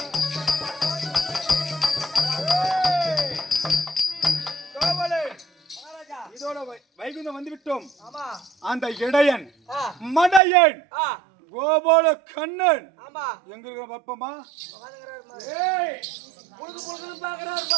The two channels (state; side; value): drops out; left; at 10.4 s